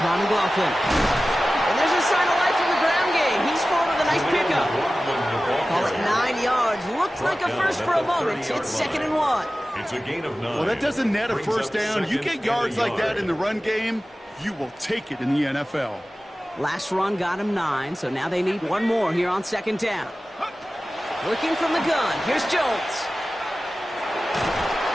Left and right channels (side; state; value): both; normal; correlation 0.96